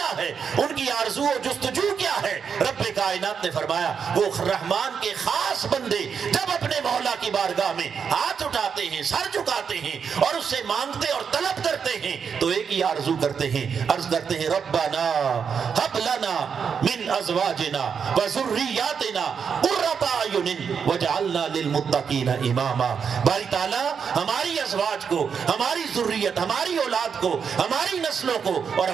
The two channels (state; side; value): quieter; left; 6.6 dB